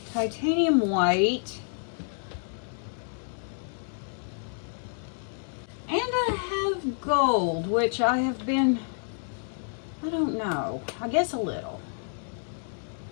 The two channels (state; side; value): silent; right; 59 dB below the other